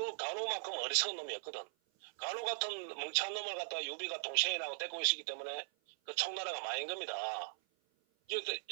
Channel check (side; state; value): left; silent; 52 dB below the other